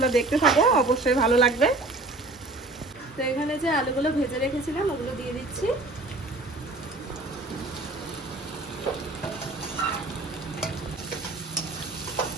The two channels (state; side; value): quieter; left; 3.0 dB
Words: দেখতে থাকো, অবশ্যই ভালো লাগবে। তো এখানে যে আলুগুলো ভেজে রেখেছিলাম ওগুলো দিয়ে দিচ্ছি।